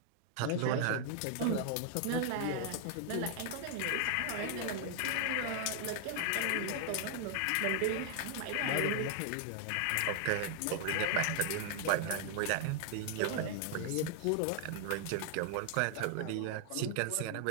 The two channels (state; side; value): different; both; correlation 0.00